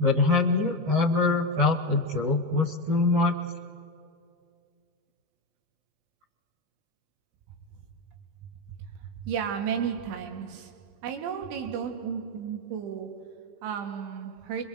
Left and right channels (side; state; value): left; late; 20 ms